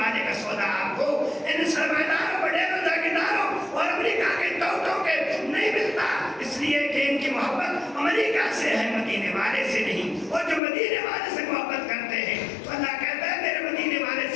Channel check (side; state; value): right; drops out; at 10.6 s